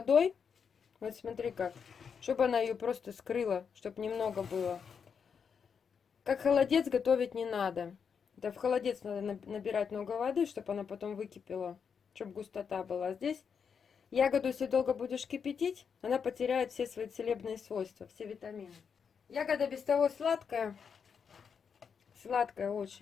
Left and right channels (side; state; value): right; quieter; 6.5 dB